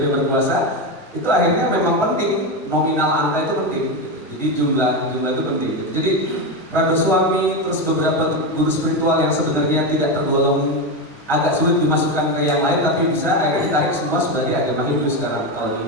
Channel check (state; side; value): normal; both; correlation 0.13